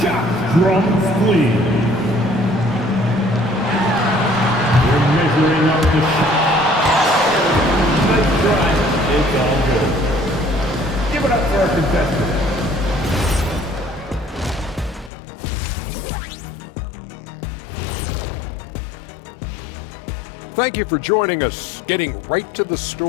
shot. Drums, please. Measuring up the shot. Nice try. It's all good. Give it up for our contestants. Thank you for joining us. Getting right to the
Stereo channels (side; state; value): right; drops out; at 15.1 s